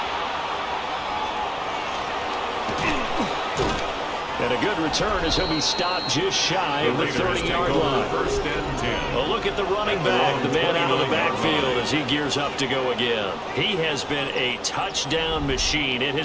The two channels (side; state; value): both; identical; correlation 1.00